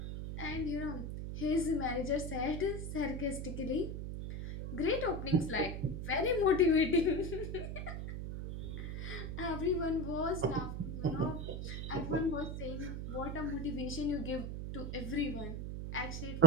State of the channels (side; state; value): right; noise; hum, 4 dB below the sound